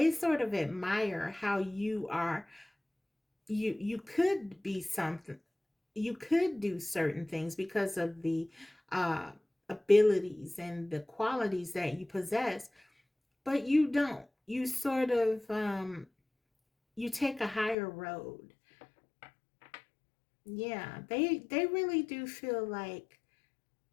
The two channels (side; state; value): right; drops out; at 17.8 s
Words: sort of admire how you are. You could be something. You could do certain things because of the uh, abilities and the qualities that you possess, but you don't. You sort of you take a higher road. Yeah, they really do feel like